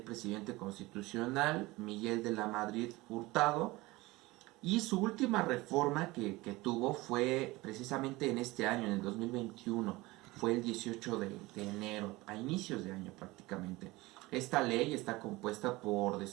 presidente constitucional Miguel de la Madrid Hurtado, y su última reforma que tuvo fue precisamente en este año, en el 2021, fue el 18 de enero, a inicios de año prácticamente. Esta ley está compuesta por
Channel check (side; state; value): left; quieter; 20.9 dB